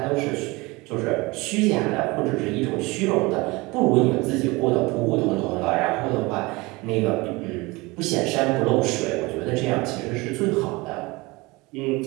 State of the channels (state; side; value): quieter; left; 23.6 dB